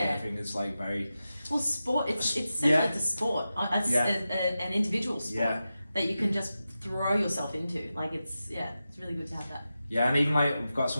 Surfing is like very. Well, sport. It's similar to sport. It's an individual sport that you can just throw yourself into. Like it's really good to have that. Yeah, and even like we've got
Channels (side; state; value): both; inverted; correlation -0.92